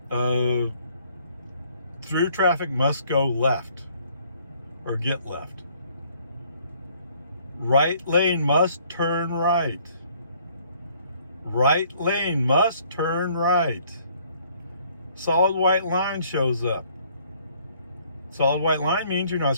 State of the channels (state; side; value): inverted; both; correlation -0.62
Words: Through traffic must go left or get left. Right lane must turn right. Right lane must turn right. Solid white line shows up. Solid white line means you're not